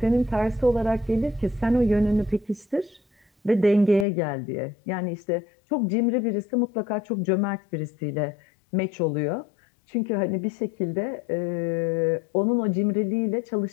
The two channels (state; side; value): drops out; right; at 4.0 s